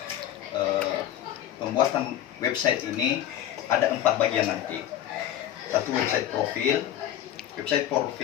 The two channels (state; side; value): quieter; right; 11.5 dB